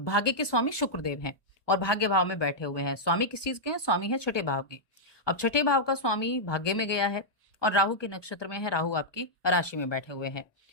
के स्वामी शुक्रदेव हैं और भाग्य भाव में बैठे हुए हैं। स्वामी किस चीज के हैं? स्वामी है छठे भाव के। अब छठे भाव का स्वामी भाग्य में गया है और राहु के नक्षत्र में है, राहु आपकी राशि में बैठे हुए हैं।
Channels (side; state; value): right; late; 1.2 ms